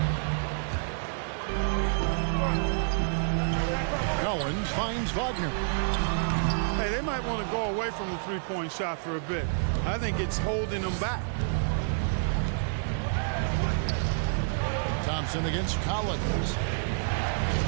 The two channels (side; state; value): left; silent; digital silence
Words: Owens finds Wagner. Hey, they might want to go away from the three-point shot for a bit. I think it's holding them back. Thompson against Collins.